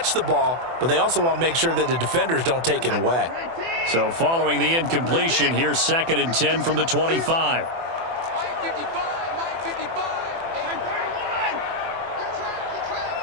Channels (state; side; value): late; left; 24 ms